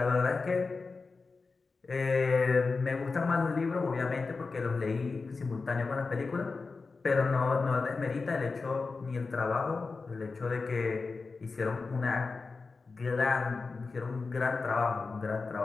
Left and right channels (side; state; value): right; quieter; 4.2 dB